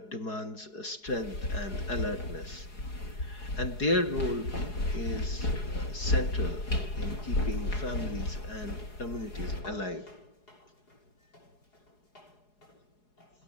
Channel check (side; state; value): right; late; 4.8 ms